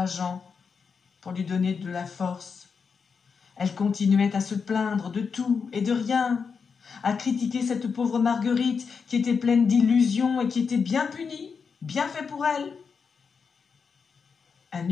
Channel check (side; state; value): right; quieter; 5.7 dB